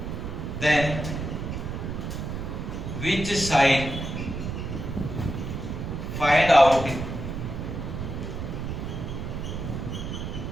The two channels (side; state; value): right; noise; rumble, 5 dB below the sound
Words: then which sign find out